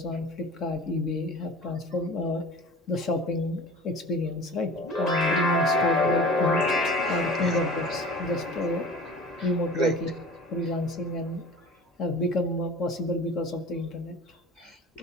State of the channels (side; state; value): both; normal; correlation 0.41